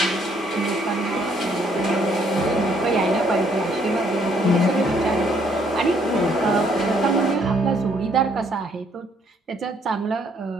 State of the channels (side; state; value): both; normal; correlation 0.67